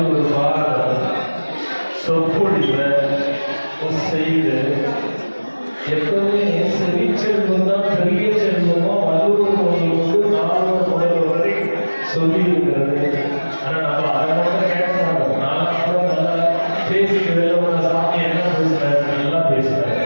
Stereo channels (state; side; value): inverted; both; correlation -1.00